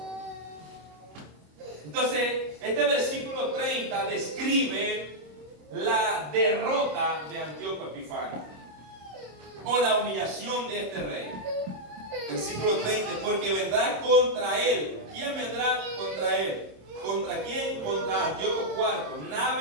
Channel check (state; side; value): late; left; 26 ms